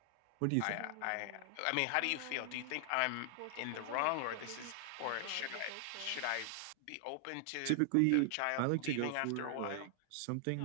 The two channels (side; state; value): both; different; correlation 0.00